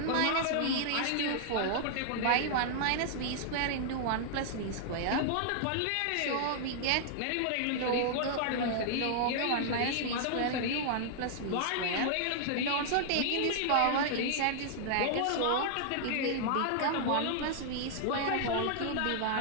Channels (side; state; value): both; different; correlation -0.01